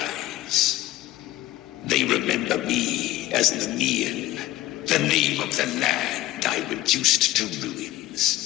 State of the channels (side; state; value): right; quieter; 16.0 dB